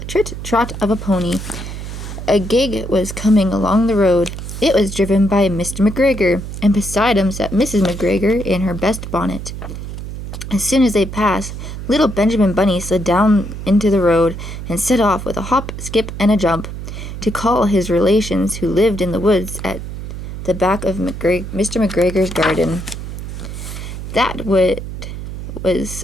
of a pony. A gig was coming along the road. It was driven by Mr. McGregor, and beside him sat Mrs. McGregor in her best bonnet. As soon as they passed, little Benjamin Bunny slid down into the road and set off with a hop, skip, and a jump to call his relations who lived in the woods at the back of Mr. McGregor's garden. That wood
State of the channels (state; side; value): noise; right; hum, 8 dB below the sound